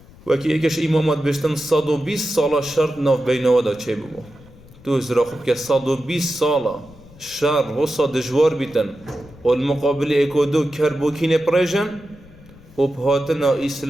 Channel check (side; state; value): left; noise; rumble, 22 dB below the sound